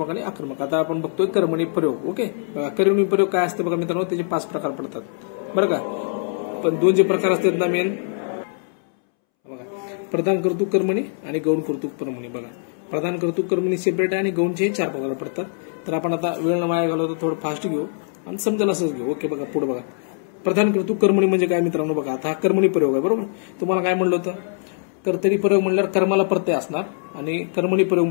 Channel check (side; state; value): right; silent; 64 dB below the other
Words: आणि आक्रमक. आता आपण बघतोय कर्मणी प्रयोग. ओके बघा, कर्मणी प्रयोग काय असते बघा मित्रांनो, त्याचे 5 प्रकार पडतात बरं का. पण 2 जे प्रकार असतात ना मेन, बघा, प्रधान कर्तृक कर्मणी आणि गौण कर्तृक कर्मणी. बघा, प्रधान कर्तृक कर्मणी सेपरेट आहे आणि गौणचे 4 प्रकार पडतात. तर आपण आता वेळ न वाया घालवतो, थोडं फास्ट घेऊ आणि समजेल असंच घेऊ. ओके बघा पुढे बघा. प्रधान कर्तृक कर्मणी म्हणजे काय मित्रांनो? बघा, आता हा कर्मणी प्रयोग आहे. बरोबर, तुम्हाला काय म्हणलं होतं? कर्तरी प्रयोग म्हणल्यावर कर्माला प्रत्यय असणार आणि कर्मणी प्रयोग